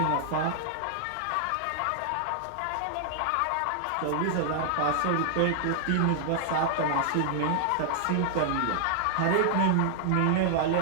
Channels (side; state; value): both; different; correlation -0.01